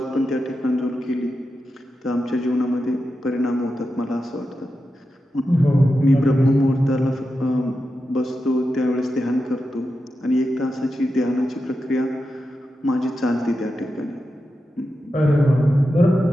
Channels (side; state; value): both; normal; correlation 0.89